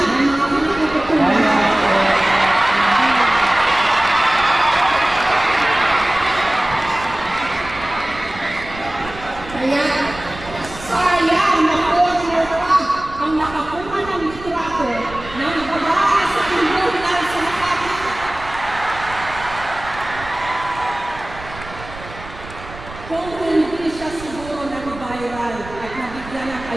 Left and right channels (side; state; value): right; noise; rumble, 15 dB below the sound